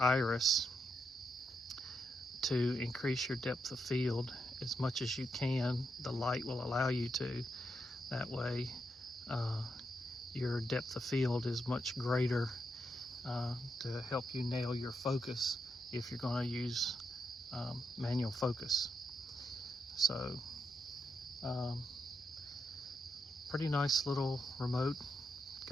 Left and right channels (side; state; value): both; normal; correlation 0.83